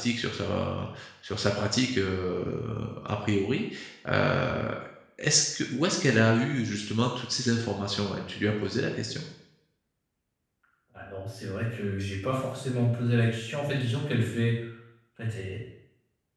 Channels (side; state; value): both; identical; correlation 1.00